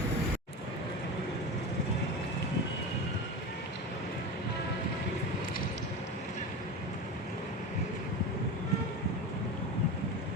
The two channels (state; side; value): normal; both; correlation 0.26